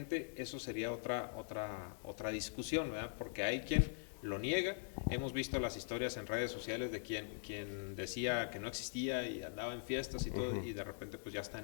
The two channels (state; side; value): silent; right; digital silence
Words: Eso sería otra discusión, ¿verdad? Porque hay quien lo niega. Hemos visto las historias en redes sociales de quien decía que no existía y andaba en fiestas y todo, y de repente pues ya está